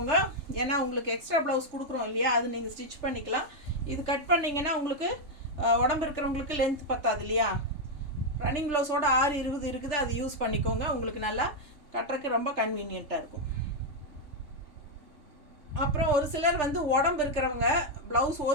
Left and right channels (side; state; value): left; late; 3.4 ms